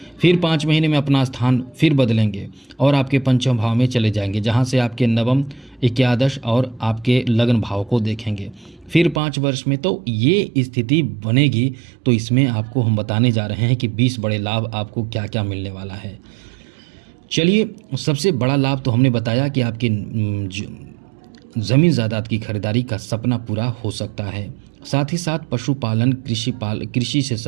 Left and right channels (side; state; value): left; drops out; at 9.2 s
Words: फिर 5 महीने में अपना स्थान फिर बदलेंगे और आपके पंचम भाव में चले जाएंगे, जहाँ से आपके नवम, एकादश और आपके लग्न भाव को देखेंगे। फिर 5 वर्ष में तो ये स्थिति बनेगी। तो इसमें आपको हम बताने जा रहे हैं कि 20 बड़े लाभ आपको क्या क्या मिलने वाला है। चलिए, सबसे बड़ा लाभ तो हमने बताया कि आपकी ज़मीन जायदाद की खरीदारी का सपना पूरा हो सकता है। साथ ही साथ पशुपालन, कृषि से